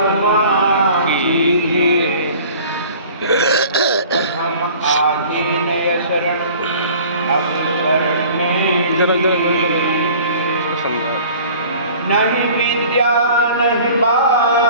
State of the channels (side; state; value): both; inverted; correlation -0.47